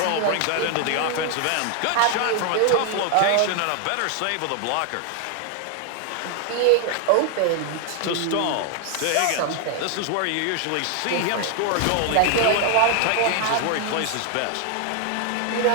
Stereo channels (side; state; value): both; different; correlation 0.00